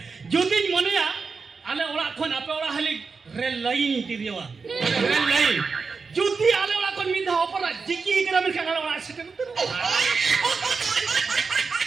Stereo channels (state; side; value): quieter; left; 4.9 dB